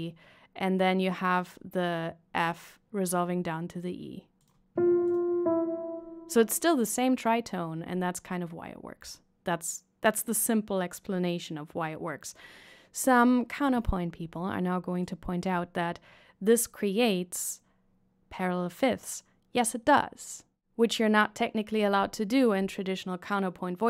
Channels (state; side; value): identical; both; correlation 1.00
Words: and then you have the F resolving down to the E. So it's still the same tritone, and that's kind of why it works. That's the simple explanation of why it works. Some counterpoint people are now going to point out that this creates parallel fifths. Yes, it does, which you're not technically allowed to do in traditional counterpoint